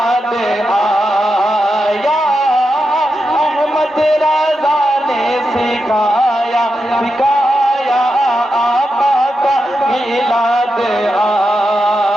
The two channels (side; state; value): both; normal; correlation 0.87